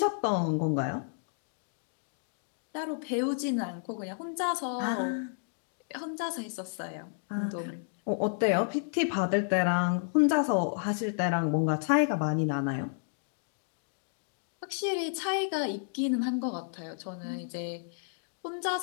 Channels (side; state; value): right; silent; digital silence